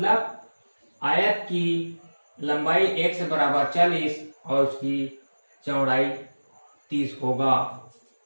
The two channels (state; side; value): inverted; both; correlation -1.00